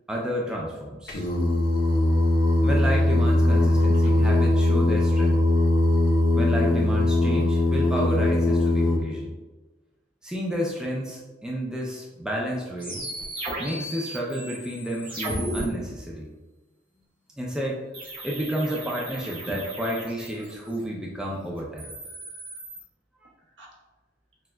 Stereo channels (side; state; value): both; normal; correlation 0.84